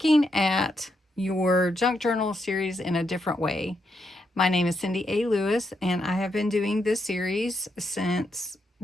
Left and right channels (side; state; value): both; normal; correlation 0.81